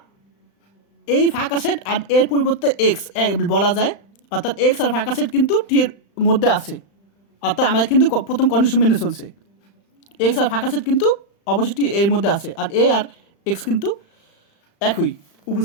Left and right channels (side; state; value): right; late; 35 ms